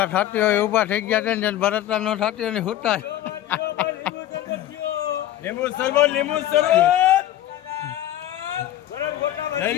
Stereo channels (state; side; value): quieter; right; 13.0 dB